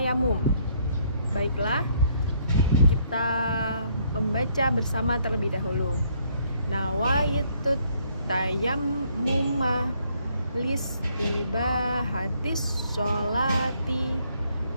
Baiklah, kita membaca bersama terlebih dahulu. Nawaitu tayammuma listibahatis sholati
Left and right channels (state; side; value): inverted; both; correlation -0.68